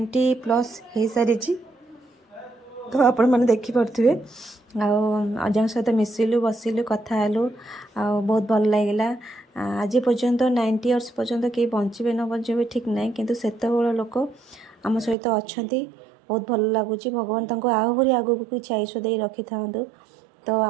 हो सारी तो आपण मैंने देखिपे अजा सहित मिसिलु बसिलु कथा हेलु बहुत भल लगे आज पर्यंत 90 इयर्स पर्यंत कहीं बचे न बचे ठीक ना किंतु सेत लोक आम सहित अच्छा बहुत भल लगुच भगवान आहरी आगू किसी आयुष दे रखी था तो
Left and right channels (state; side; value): drops out; left; at 15.2 s